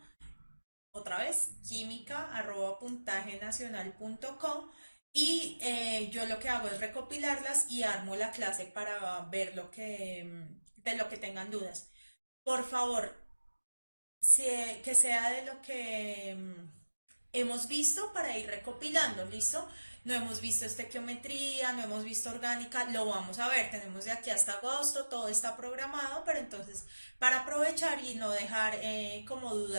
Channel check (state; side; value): inverted; both; correlation -1.00